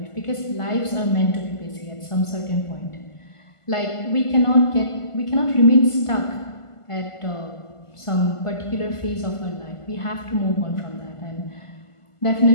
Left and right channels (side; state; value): right; late; 1.5 ms